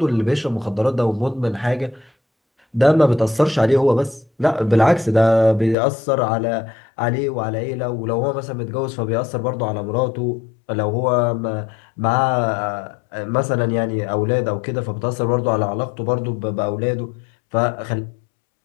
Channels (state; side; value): drops out; right; at 5.8 s